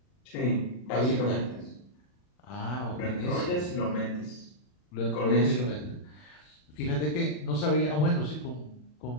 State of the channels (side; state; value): right; late; 40 ms